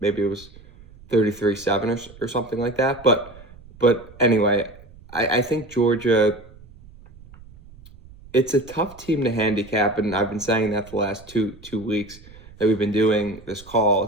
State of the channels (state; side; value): noise; right; rumble, 21 dB below the sound